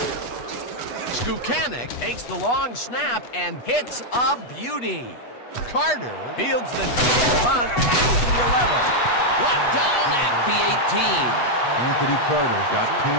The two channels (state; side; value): late; right; 8.2 ms